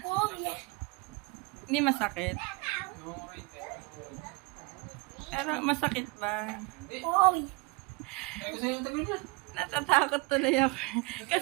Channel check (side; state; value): left; quieter; 27.7 dB